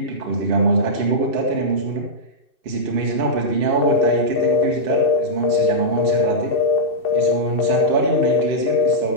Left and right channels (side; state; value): left; late; 2.6 ms